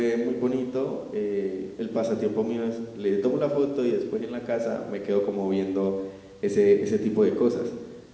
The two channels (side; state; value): both; identical; correlation 1.00